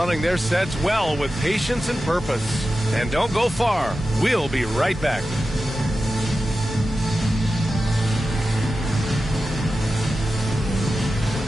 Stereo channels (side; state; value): both; normal; correlation 0.93